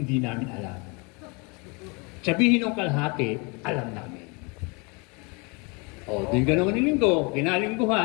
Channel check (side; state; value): right; quieter; 30.4 dB